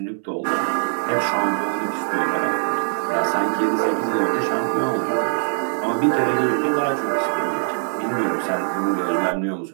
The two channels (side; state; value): left; silent; 63 dB below the other